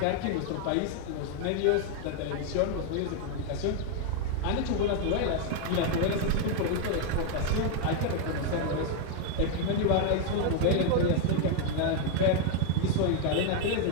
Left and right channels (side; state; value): both; different; correlation 0.00